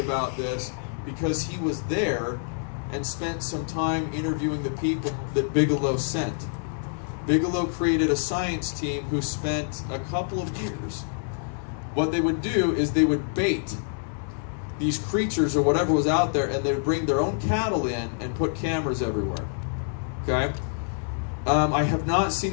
this because he was there and spent some time interviewing the people that Bigelow sent. Bigelow created a science team who spent a couple of years. What they would do is they would bait these creatures or whatever was out there, and they would bring their own cattle in and put cameras everywhere. Okay? I have not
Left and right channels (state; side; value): silent; right; 60 dB below the other